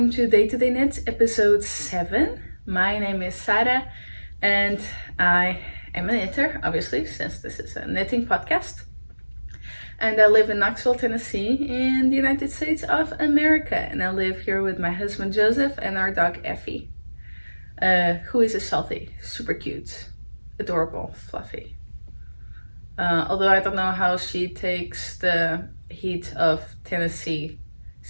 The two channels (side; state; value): both; inverted; correlation -1.00